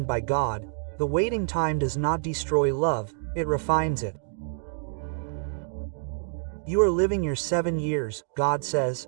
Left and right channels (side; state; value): left; silent; digital silence